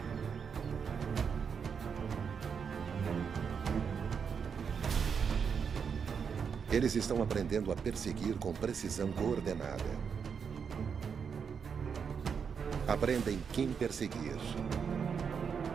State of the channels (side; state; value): left; quieter; 6.5 dB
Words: Eles estão aprendendo a perseguir com precisão coordenada. Aprendem quem perseguir.